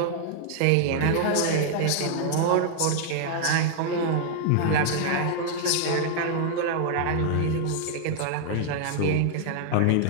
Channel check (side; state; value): both; different; correlation 0.00